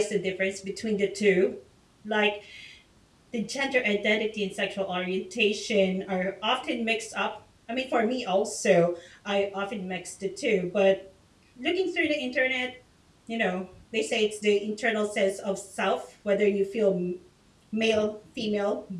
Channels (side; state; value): both; identical; correlation 1.00